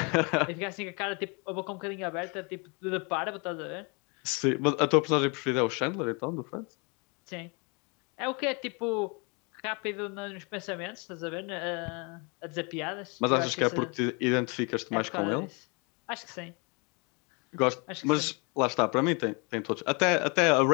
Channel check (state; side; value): quieter; right; 32.0 dB